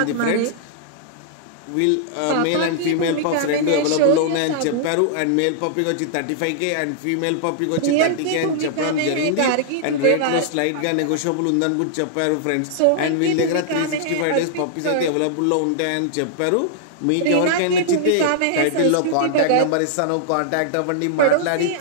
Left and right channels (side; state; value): both; different; correlation -0.01